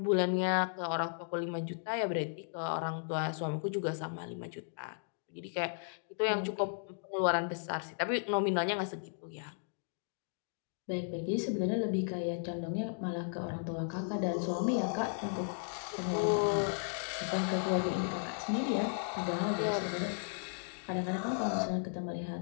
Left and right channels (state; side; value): silent; right; digital silence